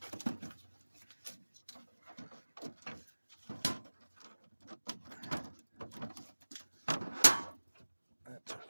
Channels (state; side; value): inverted; both; correlation -1.00